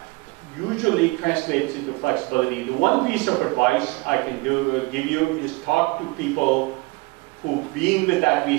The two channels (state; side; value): quieter; left; 24.6 dB